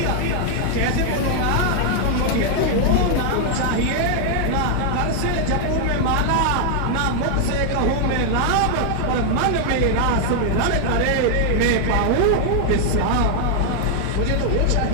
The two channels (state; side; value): different; both; correlation 0.00